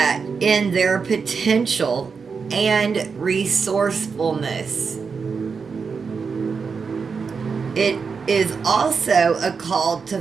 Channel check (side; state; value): left; quieter; 5.4 dB